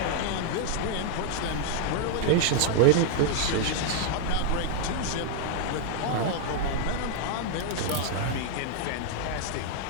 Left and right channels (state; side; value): different; both; correlation 0.00